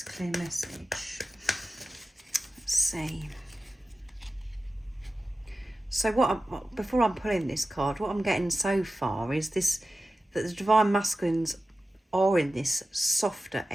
clear message. Let's see. So before I'm pulling this card, what I'm getting so far is this, that the Divine Masculines are in this softer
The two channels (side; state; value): both; normal; correlation 0.93